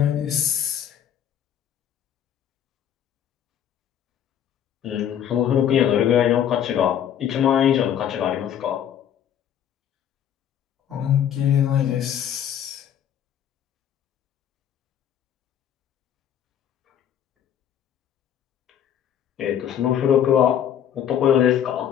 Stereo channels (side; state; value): right; quieter; 9.7 dB